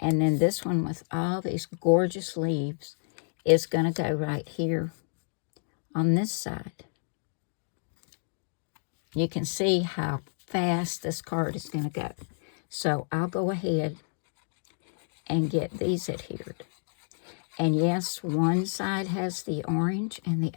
then this one with all these gorgeous leaves is going to go right here on this side. You can see how fast this card is going to go. So I'll go ahead and get these adhered. And yes, one side has the orange and the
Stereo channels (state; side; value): silent; right; digital silence